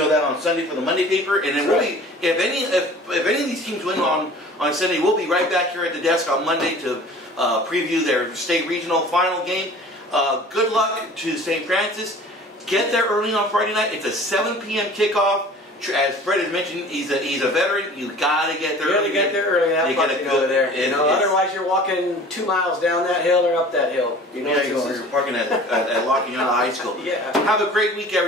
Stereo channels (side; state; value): both; normal; correlation 0.45